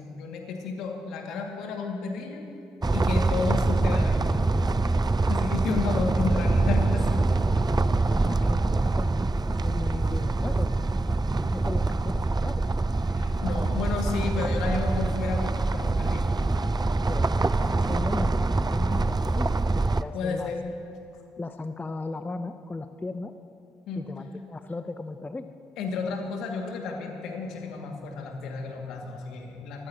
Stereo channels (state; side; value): normal; both; correlation 0.89